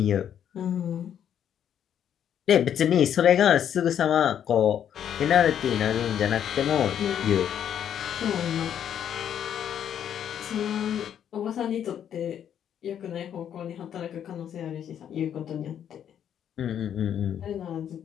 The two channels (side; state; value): right; quieter; 9.4 dB